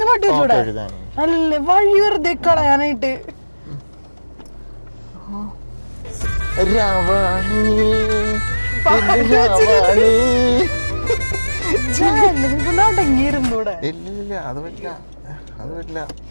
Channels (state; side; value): inverted; both; correlation -1.00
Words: പാട്ട് വെച്ചൂടെ? അല്ലേ വഴി വെറുതെ കളയാനായിട്ട്. അടങ്ങിയിരുന്നൂടെ? ഇല്ല അത് പറ്റില്ല, അത് പറ്റില്ല.